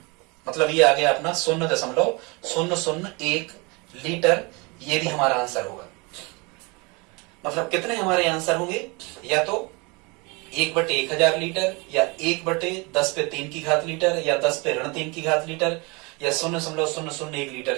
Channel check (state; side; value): quieter; left; 28.1 dB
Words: मतलब ये आ गया अपना 0.001 लीटर। ये भी हमारा आंसर होगा। मतलब कितने हमारे आंसर होंगे, या तो 1/1000 लीटर, या 1/10⁻³ की घात लीटर, या 10⁻³ की घात लीटर, या 0.001 लीटर।